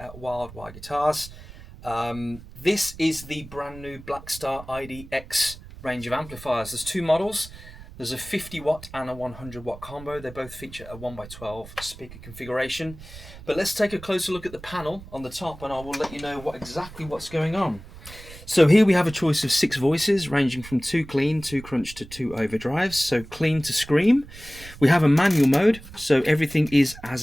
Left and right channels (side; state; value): right; noise; rumble, 17 dB below the sound